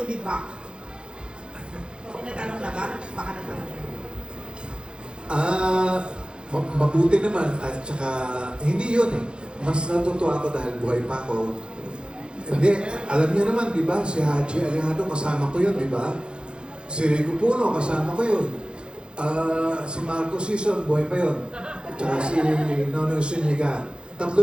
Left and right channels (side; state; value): left; late; 0.053 ms